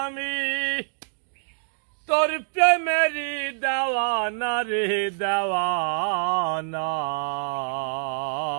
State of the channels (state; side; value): silent; left; digital silence